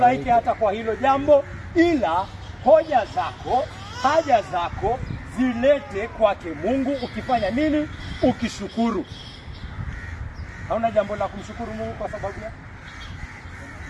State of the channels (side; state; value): both; identical; correlation 1.00